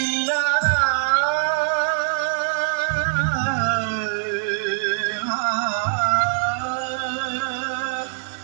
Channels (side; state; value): left; silent; 64 dB below the other